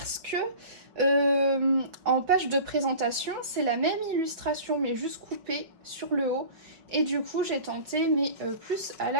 que en page de présentation c'est la même illustration mais juste coupée sur le haut et du coup j'ai tenté mais plus à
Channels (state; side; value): late; left; 5.5 ms